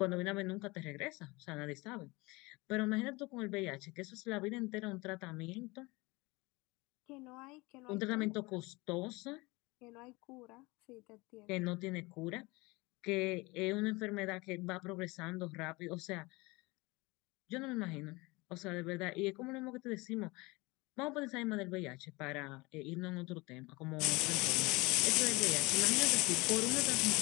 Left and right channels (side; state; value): right; quieter; 24.0 dB